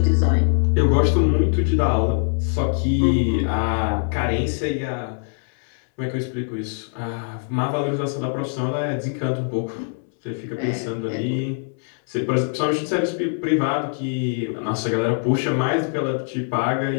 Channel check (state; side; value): silent; right; 64 dB below the other